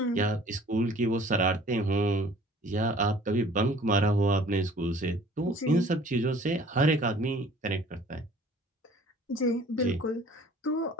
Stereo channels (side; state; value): both; normal; correlation 0.51